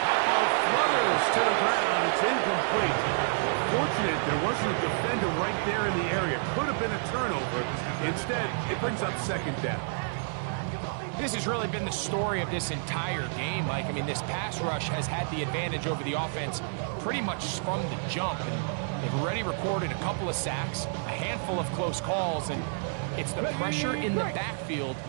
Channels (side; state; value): left; silent; digital silence